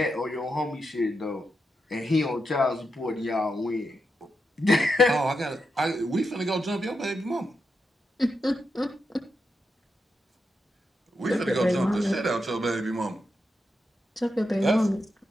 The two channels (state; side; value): normal; both; correlation 0.86